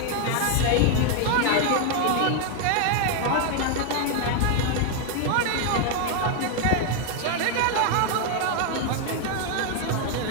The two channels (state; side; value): different; both; correlation 0.00